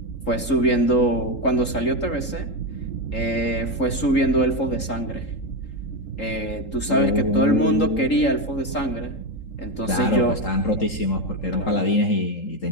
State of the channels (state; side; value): late; right; 3.8 ms